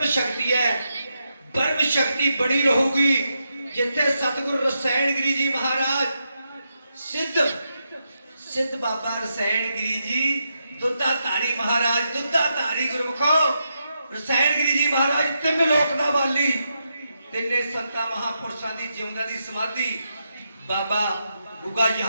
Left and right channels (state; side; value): inverted; both; correlation -0.84